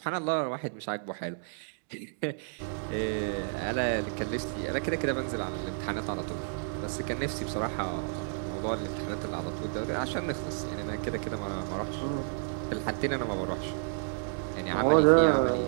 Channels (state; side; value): silent; left; digital silence